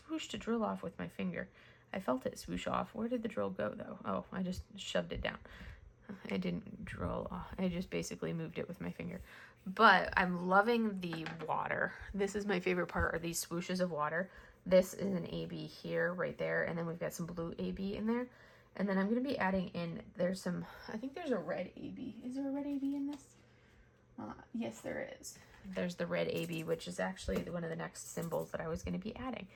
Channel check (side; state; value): both; identical; correlation 1.00